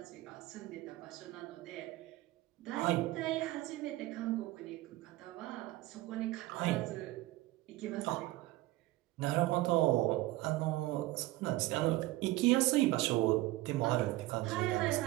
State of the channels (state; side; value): quieter; left; 17.9 dB